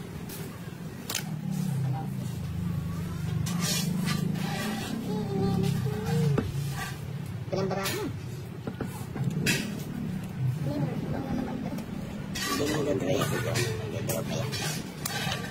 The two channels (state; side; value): identical; both; correlation 1.00